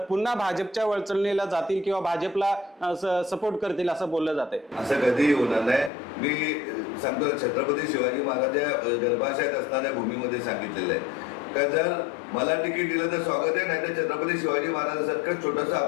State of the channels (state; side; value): drops out; right; at 5.9 s